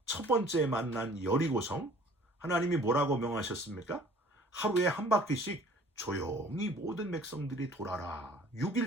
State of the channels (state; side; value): normal; both; correlation 0.52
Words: 첫 번째 만난 여리고성, 하나님이 뭐라고 명하셨습니까? 하루에 한 바퀴씩 조용히 모든 백성들이 돌아라.